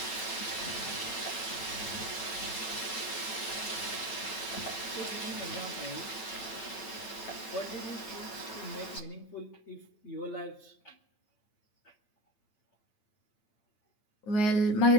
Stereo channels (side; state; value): right; late; 9.0 ms